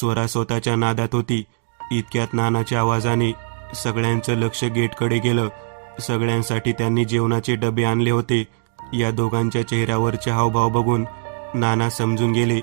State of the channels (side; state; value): left; silent; digital silence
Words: स्वतःच्या नादात होती. इतक्यात नानाच्या आवाजाने सगळ्यांचं लक्ष गेटकडे गेलं. सगळ्यांसाठी त्यांनी जेवणाचे डबे आणले होते. या दोघांच्या चेहऱ्यावरचे हावभाव बघून नाना समजून गेले.